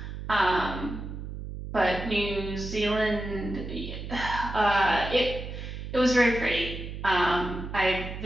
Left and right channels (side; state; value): right; noise; hum, 8 dB below the sound